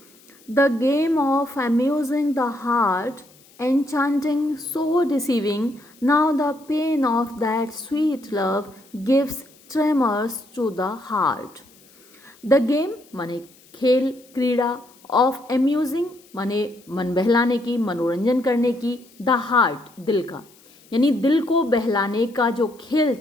the game of amusing the heart, enchanting, so deceiving, now the pain of that sweet love gives tremors to the heart. The game माने खेल, क्रीड़ा, ऑफ amusing माने मन बहलाने की, मनोरंजन करने की, द हार्ट दिल का, यानी दिल को बहलाने का जो खेल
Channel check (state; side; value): noise; left; hiss, 28 dB below the sound